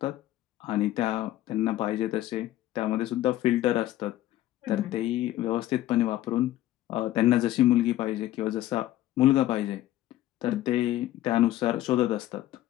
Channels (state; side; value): quieter; right; 14.3 dB